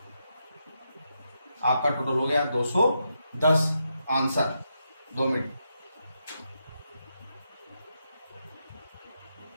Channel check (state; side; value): inverted; both; correlation -0.83